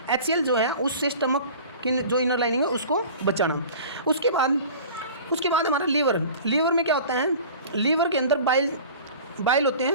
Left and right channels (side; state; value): both; inverted; correlation -0.41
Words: HCl जो है उससे स्टमक की जो इनर लाइनिंग है उसको बचाना। उसके बाद हमारा लीवर में क्या होता है? लीवर के अंदर बाइल होते